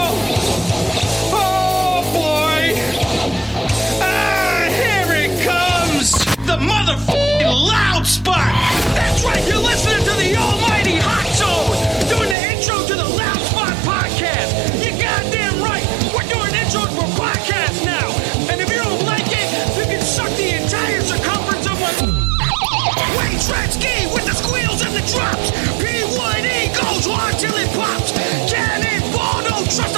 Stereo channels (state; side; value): drops out; left; at 12.4 s